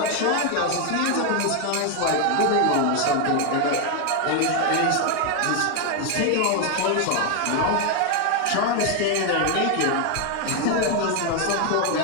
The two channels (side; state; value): both; different; correlation 0.01